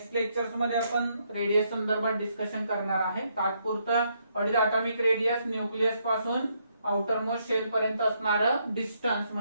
लेक्चर्स मध्ये आपण रेडियस संदर्भात डिस्कशन करणार आहे. तात्पुरतं what is atomic radius, nucleus पासून आउटर मोस्ट शेल पर्यंत असणारं डिस्टन्स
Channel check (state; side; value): inverted; both; correlation -0.75